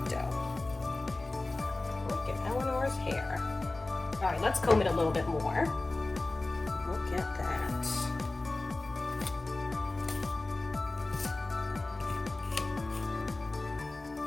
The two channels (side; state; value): right; quieter; 3.1 dB